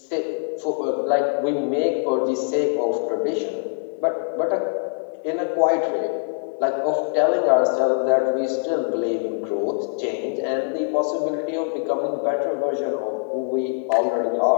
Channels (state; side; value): silent; right; 63 dB below the other